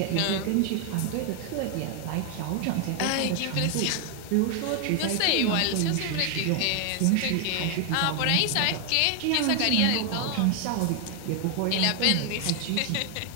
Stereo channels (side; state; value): both; different; correlation 0.00